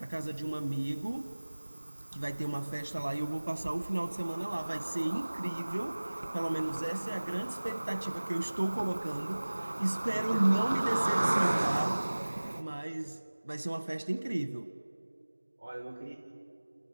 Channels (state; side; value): inverted; both; correlation -1.00